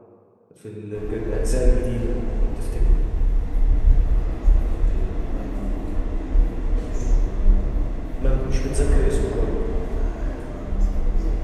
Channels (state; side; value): identical; both; correlation 1.00